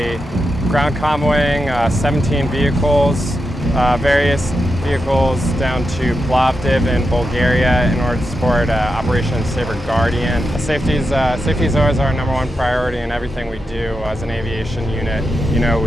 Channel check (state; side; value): normal; both; correlation 0.87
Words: ground convoying 17 vehicles, various vehicles down to Plovdiv in Bulgaria in order to support Operation Saber Guardian. Safety is always our #1 priority in everything we do as an aviation unit. You know,